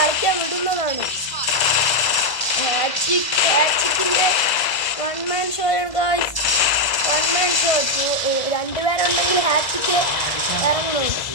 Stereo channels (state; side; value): late; right; 2.0 ms